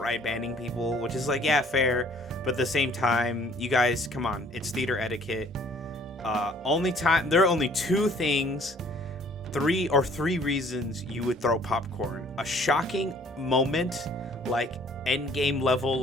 banning people, which is like, yeah, fair, but at the same time, you guys, come on, it's theater etiquette. There are only three reasons you would throw popcorn: a shocking moment, like end game level,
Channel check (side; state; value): both; normal; correlation 0.57